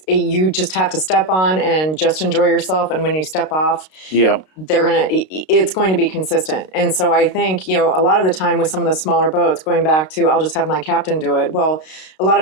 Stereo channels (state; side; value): late; right; 32 ms